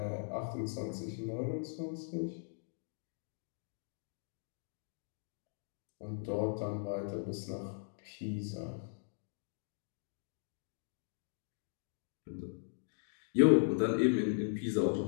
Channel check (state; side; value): silent; right; digital silence